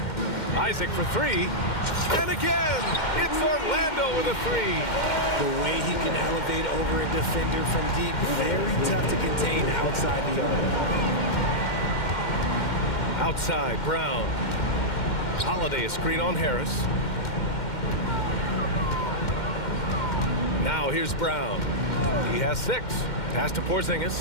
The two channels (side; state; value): right; late; 2.1 ms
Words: Isaac for three. And again, it's Orlando with a three. The way he can elevate over a defender from deep, very tough to contain outside the arc. Outside, Brown. Holiday a screen on Harris. Now here's Brown. He has 6. Pass to